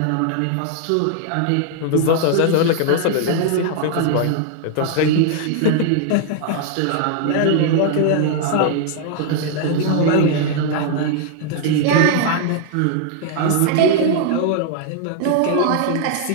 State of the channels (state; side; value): different; both; correlation 0.00